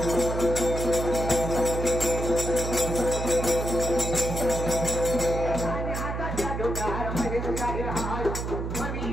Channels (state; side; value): noise; right; hum, 4 dB below the sound